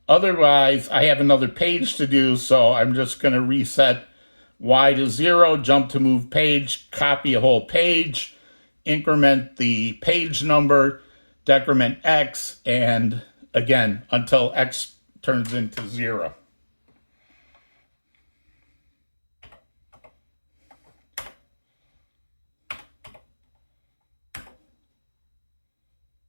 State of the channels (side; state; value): both; inverted; correlation -1.00